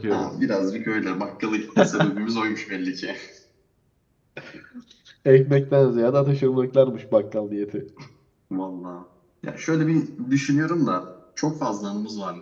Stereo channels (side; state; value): both; identical; correlation 1.00